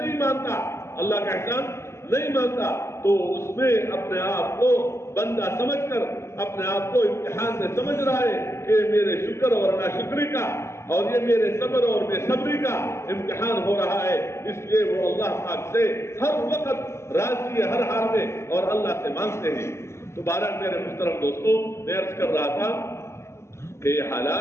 مانتا. اللہ کا احسان نہیں مانتا تو اس میں اپنے آپ کو بندہ سمجھ کر اپنے آپ کو امتحان سے سمجھ رہا ہے کہ میرے شکر اور ناشکری کا اور یہ میرے صبر اور بے صبری کا امتحان ہو رہا ہے. اس لیے وہ اللہ پاک سے ہر وقت راضی ہے ہر حال میں اور اللہ سے مانگتے ہیں. تو بہرحال میرے محترم دوستوں، میں عرض کر رہا تھا کہ یہ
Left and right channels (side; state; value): right; late; 0.13 ms